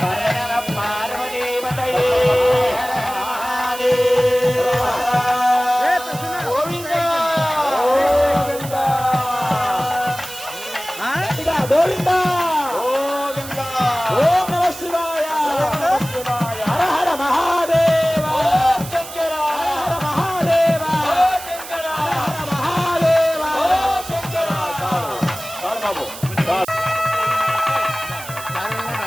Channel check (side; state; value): right; noise; hiss, 13 dB below the sound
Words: పార్వదేవతయే గోవింద గోవింద గోవింద. ఓం నమః శివాయ, హర హర మహాదేవ, శంకర హర మహాదేవ, శంకర హర మహాదేవ, శంకర. బాబు